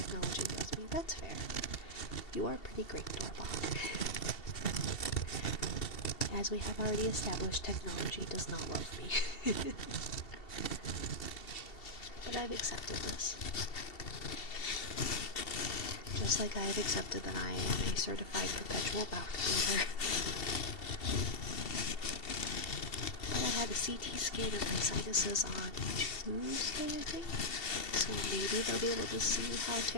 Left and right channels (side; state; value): right; late; 2.7 ms